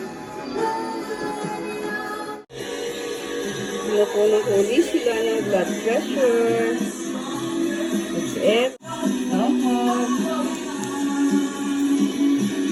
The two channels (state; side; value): identical; both; correlation 1.00